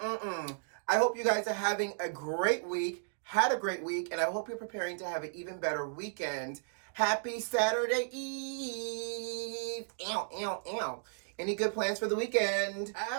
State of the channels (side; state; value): left; silent; digital silence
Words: hope you guys are having a great week, had a great week, and I hope you're preparing to have an even better weekend. Happy Saturday Eve! Ow, ow, ow. Any good plans for the weekend?